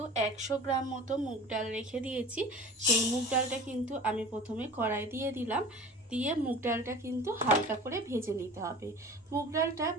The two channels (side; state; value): both; normal; correlation 0.39